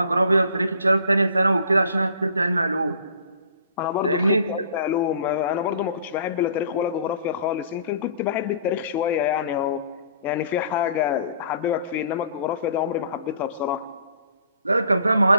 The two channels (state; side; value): inverted; both; correlation -0.52